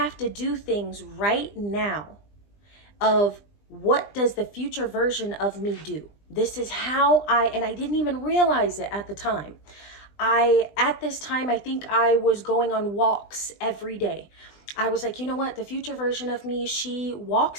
to do things right now of what does the future version of me do? This is how and I didn't even realize it at the time. At this time, I think I was going on walks every day. I was like, you know what? The future version of me, she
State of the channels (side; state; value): right; late; 20 ms